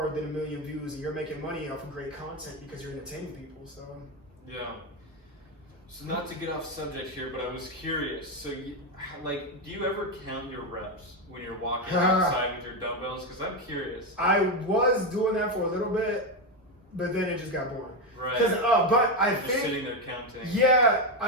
than 1 million views, and you're making money off of great content because you're entertaining people. So so not to get off subject here, but I was curious. So like, do you ever count your reps when you're walking outside with your dumbbells? Because I'm curious. I was doing that for a little bit, but then it just got boring. But I just think sitting there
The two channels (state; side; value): normal; both; correlation 0.09